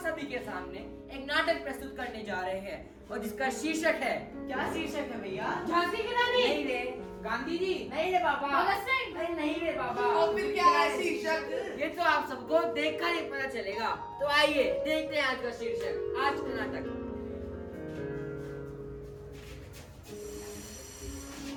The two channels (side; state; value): both; identical; correlation 1.00